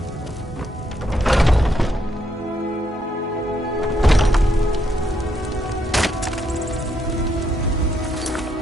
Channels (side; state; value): both; normal; correlation 0.76